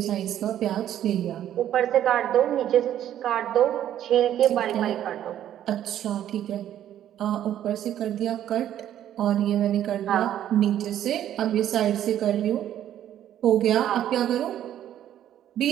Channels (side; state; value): left; quieter; 11.2 dB